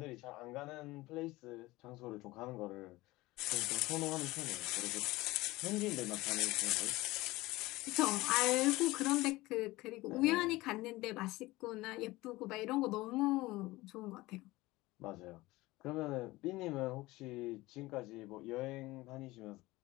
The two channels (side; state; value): right; quieter; 19.7 dB